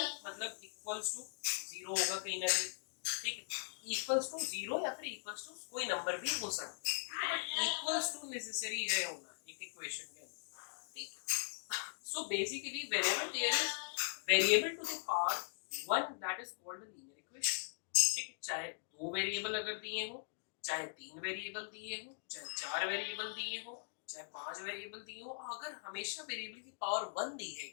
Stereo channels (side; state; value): right; silent; digital silence